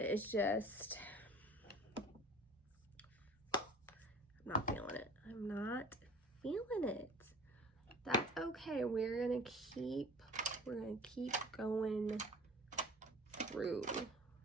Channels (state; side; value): normal; both; correlation 0.45